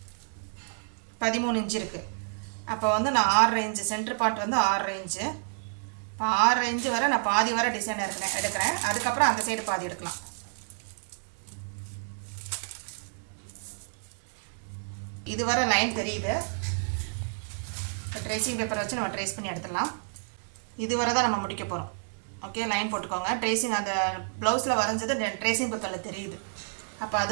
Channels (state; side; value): silent; left; digital silence